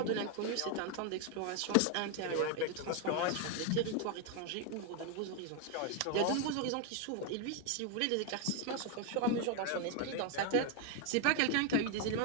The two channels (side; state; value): both; different; correlation 0.01